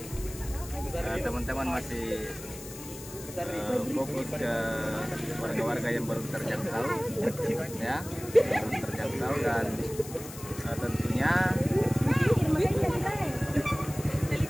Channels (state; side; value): noise; left; hiss, 14 dB below the sound